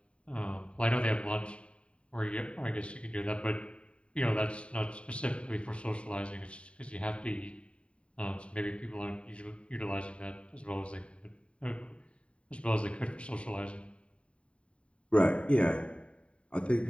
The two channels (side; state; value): right; late; 0.061 ms